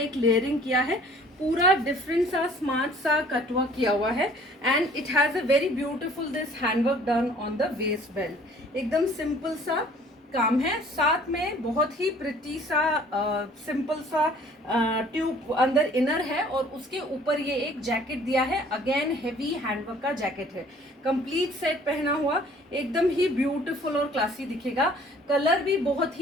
लेयरिंग किया है, पूरा डिफरेंट सा स्मार्ट सा कटवर्क किया हुआ है. And it has a very beautiful this handwork done on the waste belt. एकदम सिंपल सा काम है, साथ में बहुत ही प्रिटी सा सिंपल सा ट्यूब अंदर इनर है और उसके ऊपर ये एक जैकेट दिया है. अगेन हेवी हैंडवर्क का जैकेट है, कंप्लीट सेट पहना हुआ, एकदम ही ब्यूटीफुल और क्लासी दिखेगा. कलर भी बहुत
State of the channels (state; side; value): normal; both; correlation 0.54